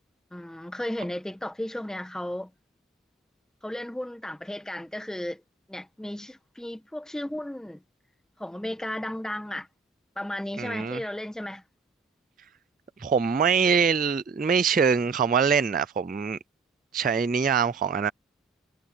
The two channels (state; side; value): quieter; left; 4.7 dB